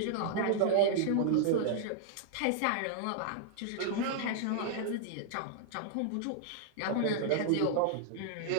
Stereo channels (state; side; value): different; both; correlation -0.01